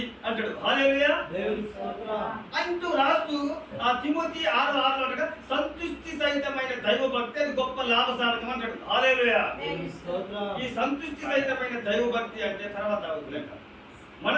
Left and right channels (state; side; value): identical; both; correlation 1.00